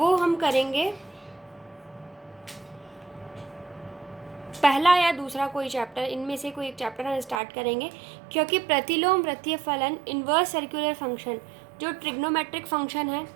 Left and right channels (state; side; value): drops out; left; at 7.4 s